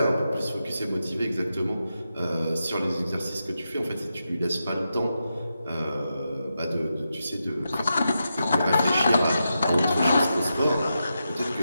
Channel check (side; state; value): both; inverted; correlation -0.87